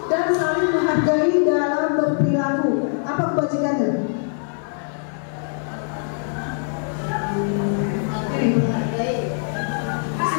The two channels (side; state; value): right; silent; 64 dB below the other